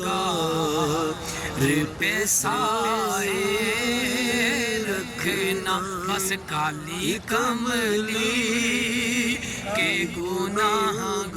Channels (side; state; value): both; identical; correlation 1.00